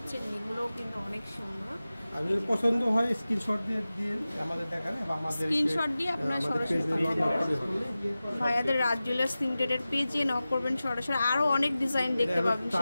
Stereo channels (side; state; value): both; inverted; correlation -0.96